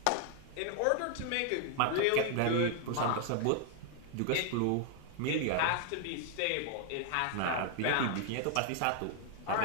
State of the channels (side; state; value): both; different; correlation 0.00